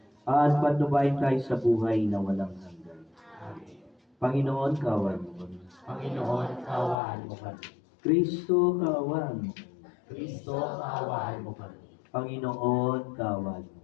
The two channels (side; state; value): right; drops out; at 7.0 s